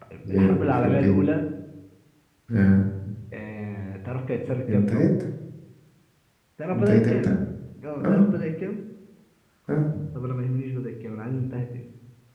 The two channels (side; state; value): both; identical; correlation 1.00